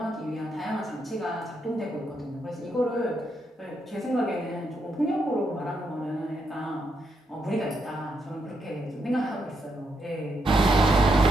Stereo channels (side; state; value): both; normal; correlation 0.79